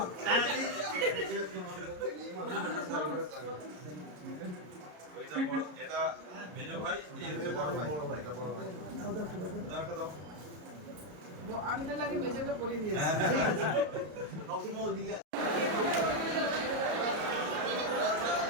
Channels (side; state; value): left; late; 33 ms